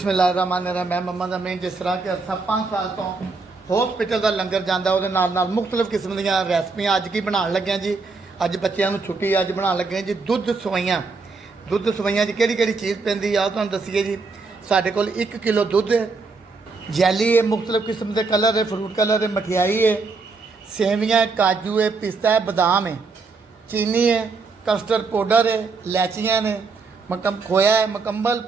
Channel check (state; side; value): quieter; left; 4.2 dB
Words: मैं मम्मा ਦਾ ਮੈਂ ਜਿਸ ਤਰ੍ਹਾਂ ਕਿ ਅਰਸਾ 5 ਸਾਲ ਤੋਂ ਹਸਪੀਟਲ ਦਾ ਲੰਗਰ ਜਾਂਦਾ ਉਹਦੇ ਨਾਲ ਮੁxtਲਫ ਕਿਸਮ ਦੀਆਂ ਰੈਸਪੀਆਂ ਅੱਜ ਕੀ ਬਣਾਉਣ ਲੱਗਿਆ ਜੀ। ਅੱਜ ਬੱਚਿਆਂ ਨੂੰ ਛੁੱਟੀ ਅੱਜ ਬਣਾਉਣ ਲੱਗੇ ਜੀ ਦੁੱਧ ਸਵਈਆਂ 'ਚ ਕਿਹੜੀ ਕਿਹੜੀ ਚੀਜ਼ ਪੈਂਦੀ ਆ ਤੁਹਾਨੂੰ ਦੱਸੀਏ ਜੀ। ਸਾਡੇ ਕੋਲ 1 ਕਿਲੋ ਦੁੱਧ ਹੈ ਜੈਲੀ ਹੈ ਮੁxtਲਫ ਕਿਸਮ ਦੇ ਕਲਰ ਹੈ ਫਰੂਟ ਕਲਰ ਹੈ ਮਠਿਆਈ ਹੈ ਸੇਵੀਆਂ ਹੈ ਕਾਜੂ ਹੈ ਪਿਸਤਾ ਹੈ ਬਦਾਮ ਹੈ ਚੀਨੀ है कस्टर्ड पाउडर है इलायचियाँ ने खोया है मुकम्मल